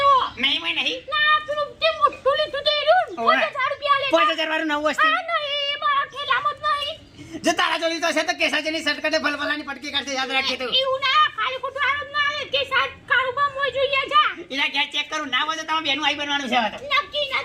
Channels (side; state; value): both; identical; correlation 1.00